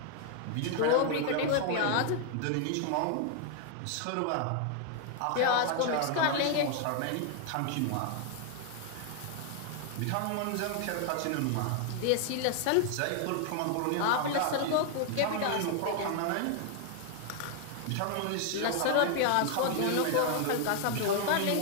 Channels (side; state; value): both; different; correlation 0.00